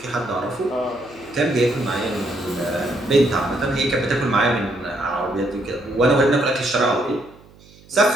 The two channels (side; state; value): right; noise; hum, 25 dB below the sound